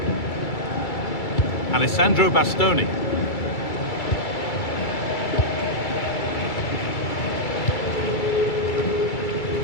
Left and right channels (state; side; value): late; right; 2.3 ms